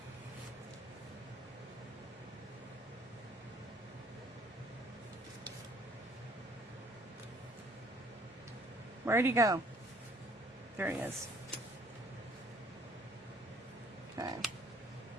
Where'd he go? There he is. Okay.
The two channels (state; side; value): normal; both; correlation 0.59